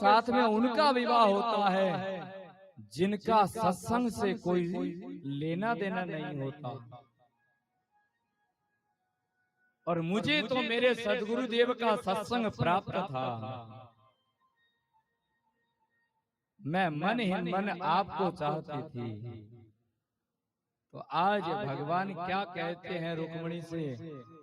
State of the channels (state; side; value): identical; both; correlation 1.00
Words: में उनका विवाह होता है जिनका सत्संग से कोई लेना देना नहीं होता, और मुझे तो मेरे सदगुरुदेव का सत्संग प्राप्त था। मैं मन ही मन आपको चाहती थी। तो आज भगवान क्या कहते हैं रुक्मिणी से